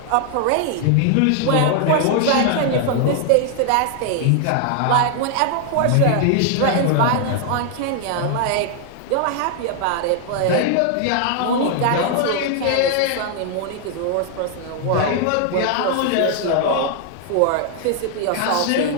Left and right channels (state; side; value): different; both; correlation 0.00